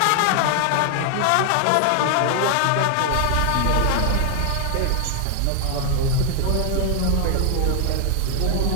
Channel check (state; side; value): different; both; correlation 0.00